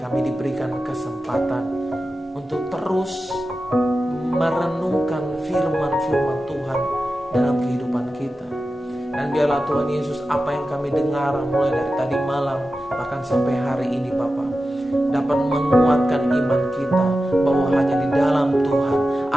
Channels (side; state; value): both; normal; correlation 0.93